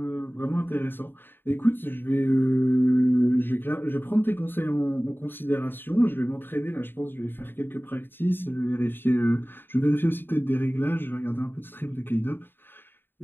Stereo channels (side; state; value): right; late; 0.098 ms